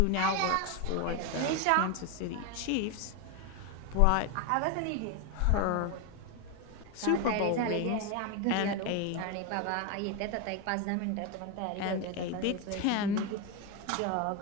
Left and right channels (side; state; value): both; different; correlation 0.02